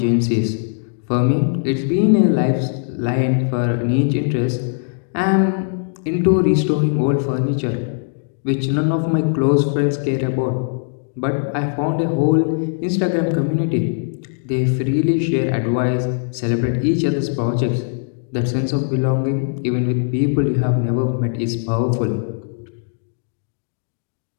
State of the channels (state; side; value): silent; right; digital silence